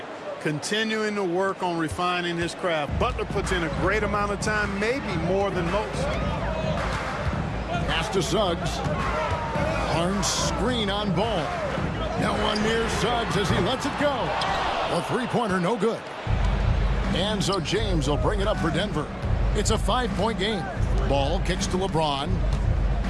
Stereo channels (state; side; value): identical; both; correlation 1.00